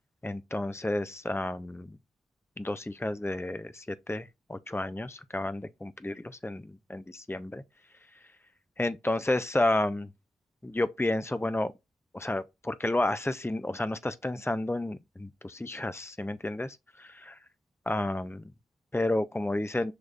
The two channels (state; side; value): normal; both; correlation 0.92